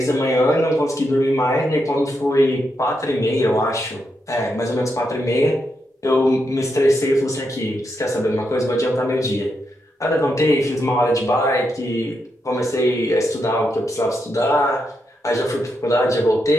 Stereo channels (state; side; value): normal; both; correlation 0.83